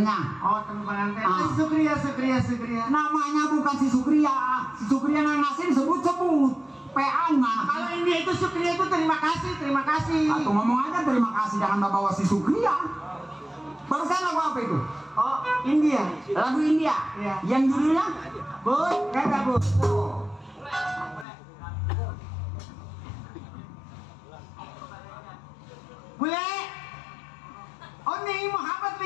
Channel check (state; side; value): drops out; right; at 21.2 s